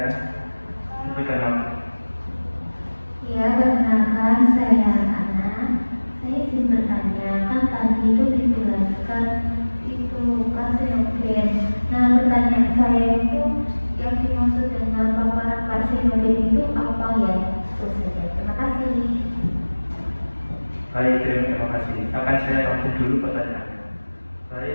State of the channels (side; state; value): both; inverted; correlation -1.00